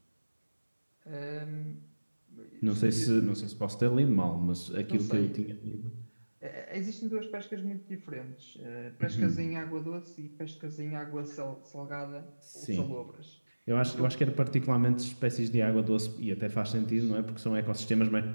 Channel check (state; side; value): inverted; both; correlation -1.00